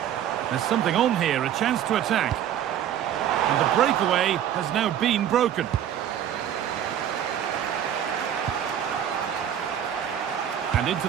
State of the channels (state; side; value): quieter; left; 10.1 dB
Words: There's something on here, a chance to attack. And the breakaway has now been broken. And into